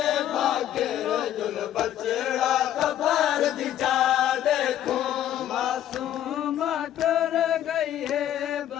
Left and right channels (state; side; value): quieter; right; 11.5 dB